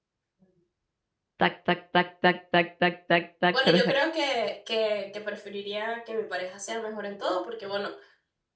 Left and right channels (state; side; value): identical; both; correlation 1.00